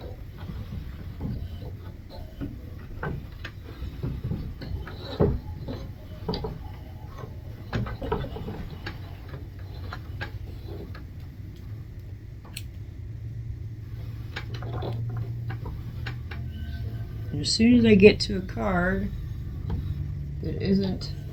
And as soon as I get to a card that isn't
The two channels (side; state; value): both; identical; correlation 1.00